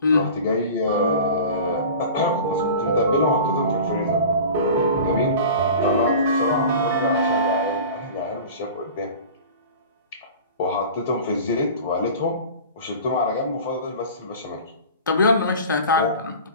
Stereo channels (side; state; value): both; inverted; correlation -0.38